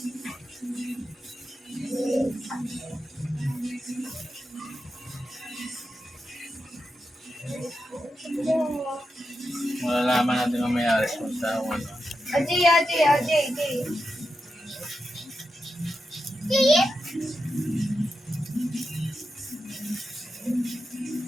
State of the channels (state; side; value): normal; both; correlation 0.88